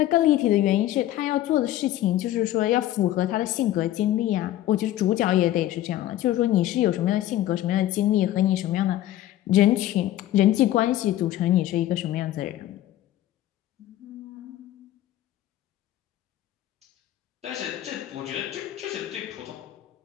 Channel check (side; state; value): right; quieter; 13.6 dB